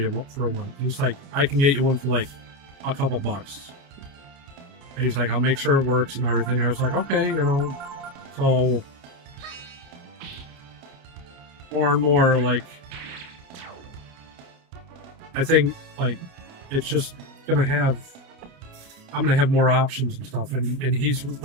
for one. He's like, I can get you one for like a couple bucks. And he's like, I'll make sure it works and everything. I was like, okay, so more and more, like, I think, like, it's just I'm gonna have more options and stuff, and he's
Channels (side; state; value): left; late; 29 ms